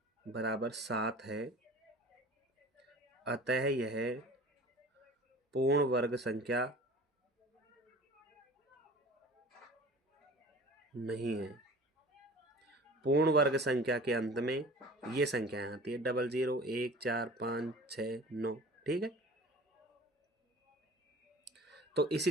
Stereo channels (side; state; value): both; normal; correlation 0.42